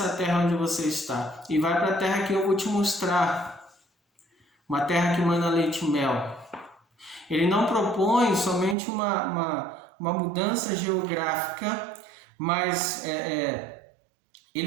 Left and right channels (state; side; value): drops out; left; at 8.8 s